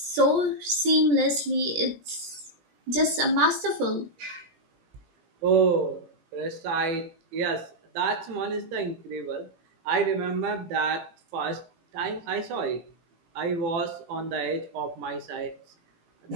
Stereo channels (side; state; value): left; late; 17 ms